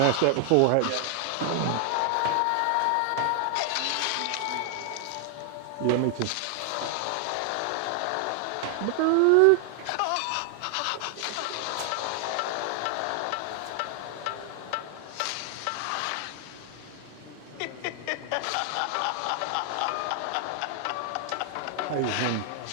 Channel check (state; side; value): different; both; correlation 0.00